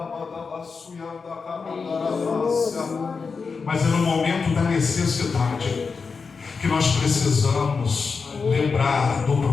Mas é no momento da necessidade que nós precisamos lembrar do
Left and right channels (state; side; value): quieter; right; 5.0 dB